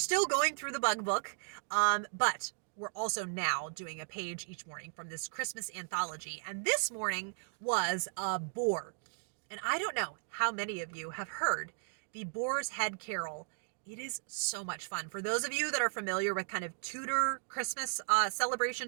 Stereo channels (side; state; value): left; silent; digital silence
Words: going through the bug book. But we're also now doing a page each morning from this Christmas anthology. And this morning was a boar. And I don't know how many of you have heard the Boar's Head Carol. It is so much fun. For those of you that are familiar with kind of Tudor Christmas